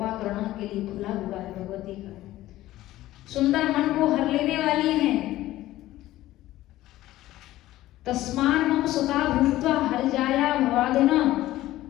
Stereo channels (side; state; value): right; quieter; 15.5 dB